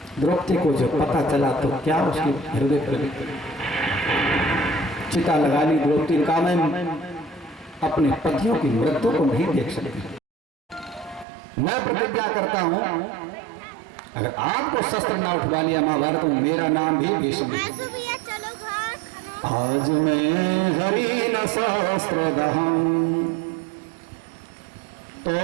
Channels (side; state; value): left; drops out; at 11.2 s